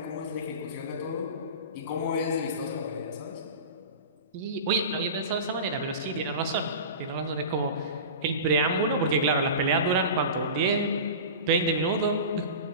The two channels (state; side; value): inverted; both; correlation -0.31